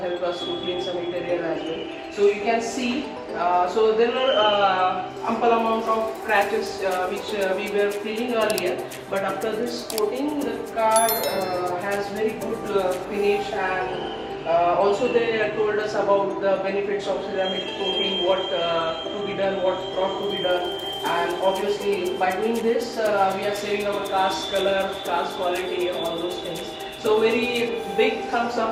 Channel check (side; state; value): both; identical; correlation 1.00